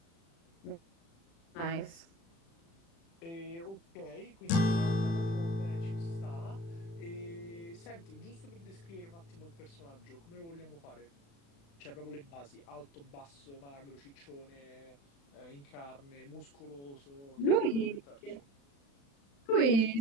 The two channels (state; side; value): late; right; 36 ms